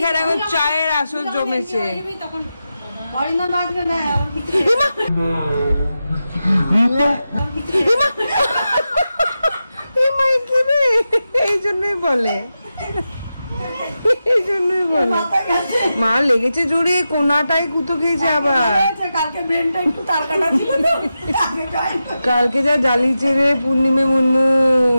এখন চায়ের আসর জমেছে। এই জন্যই বলে, মা লেগেছে জোরে, কোনাটাই কুতো খেয়েছে আবার। কালকে যা জ্বালিয়েছে রে পূর্ণিমে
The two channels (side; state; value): both; inverted; correlation -0.91